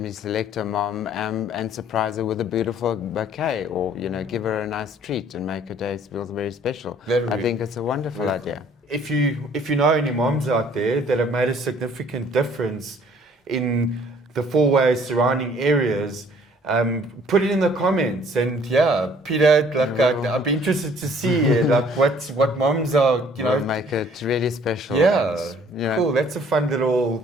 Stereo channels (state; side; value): normal; both; correlation 0.57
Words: select a mom and surprise her with a beautiful bouquet, or, give her a nice treat and make her day feel very special. I think it's a wonderful idea. If you know any moms out there that have made a significant difference in the Fourways surrounding areas, put it in the comments. And yeah, Peter, I'd be interested to see what moms are, We'll make it really special. Yeah, and, cool. That's a fun